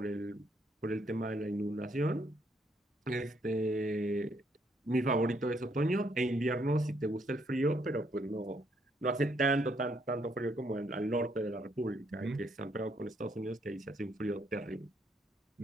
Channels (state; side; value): normal; both; correlation 0.72